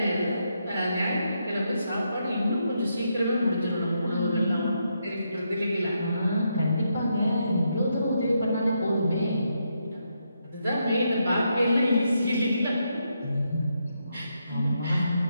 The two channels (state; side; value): inverted; both; correlation -0.80